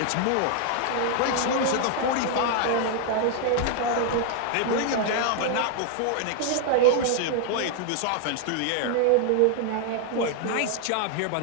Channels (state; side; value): different; both; correlation 0.00